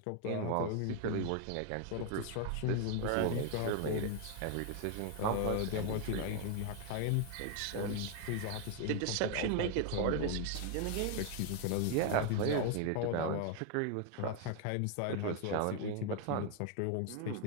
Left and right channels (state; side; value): different; both; correlation 0.00